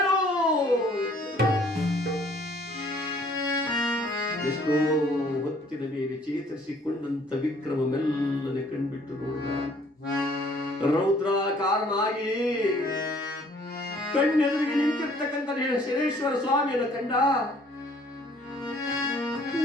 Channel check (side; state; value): both; normal; correlation 0.59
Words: ಎಷ್ಟೋ ಹೊತ್ತಿನ ಮೇಲೆ ಚೇತರಿಸಿಕೊಂಡಂತ ವಿಕ್ರಮ ಮೆಲ್ಲನೆ ಕಣ್ಬಿಟ್ಟು ನೋಡಿದ. ರೌದ್ರಾಕಾರನಾಗಿ ಕಣ್ಣೆದುರಿಗೆ ನಿಂತಿರ್ತಕ್ಕಂಥ ಶನೇಶ್ವರ ಸ್ವಾಮಿಯನ್ನು ಕಂಡ.